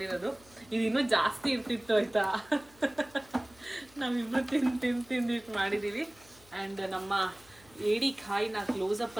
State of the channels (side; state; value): left; noise; hum, 26 dB below the sound